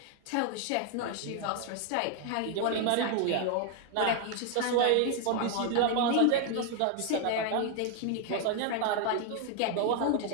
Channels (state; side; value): different; both; correlation 0.00